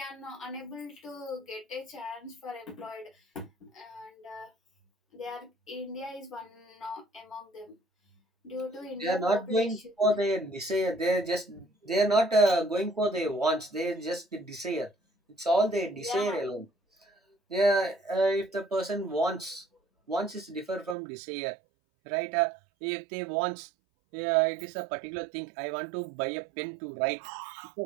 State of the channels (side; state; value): left; drops out; at 21.0 s